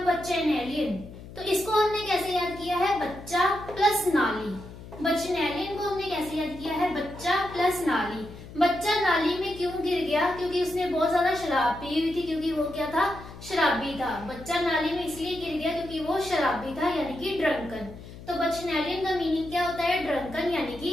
बचेनेलियन। तो इसको हमने कैसे याद किया है? बच्चा प्लस नाली। बचनेलियन को हमने कैसे याद किया है? बच्चा प्लस नाली। बच्चा नाली में क्यों गिर गया? क्योंकि उसने बहुत ज्यादा शराब पी हुई थी, क्योंकि वो क्या था? शराबी था। बच्चा नाली में इसलिए गिर गया क्योंकि वो शराबी था, यानी कि ड्रंकन। तो बचनेलियन का मीनिंग क्या होता है? ड्रंकन यानी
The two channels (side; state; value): left; noise; hum, 15 dB below the sound